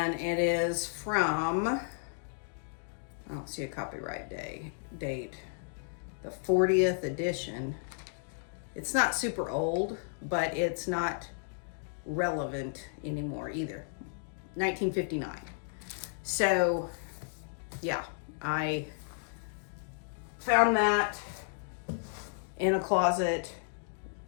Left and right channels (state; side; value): silent; right; digital silence